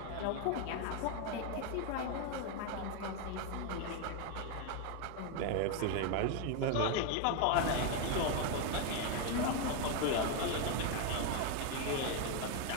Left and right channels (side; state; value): both; different; correlation 0.01